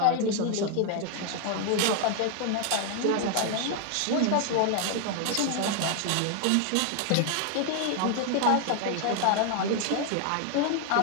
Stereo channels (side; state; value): both; different; correlation 0.00